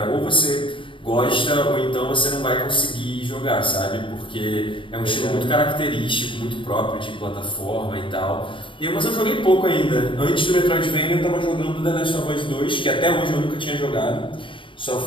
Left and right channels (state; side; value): late; right; 0.25 ms